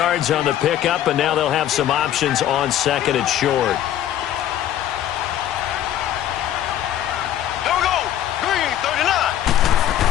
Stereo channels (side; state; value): right; quieter; 11.6 dB